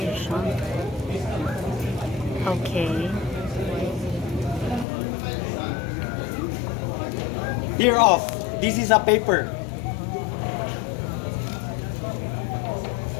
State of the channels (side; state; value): right; drops out; at 4.9 s